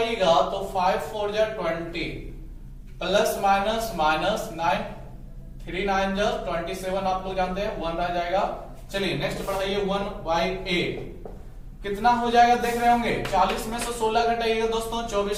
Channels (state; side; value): identical; both; correlation 1.00